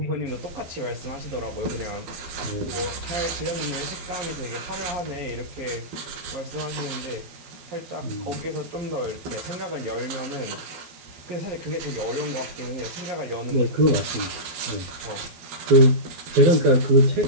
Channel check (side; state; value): left; late; 12 ms